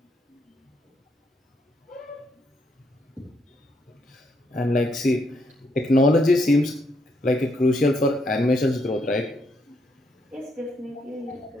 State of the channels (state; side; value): normal; both; correlation 0.75